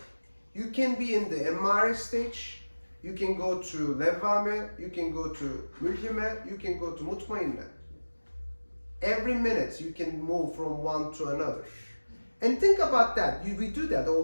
you can be in the Emmare stage, you can go to Levvame, you can go to Mulhime, you can go to Mutmainne. Every minute you can move from one to another. And think about that, we do that all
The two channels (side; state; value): both; inverted; correlation -1.00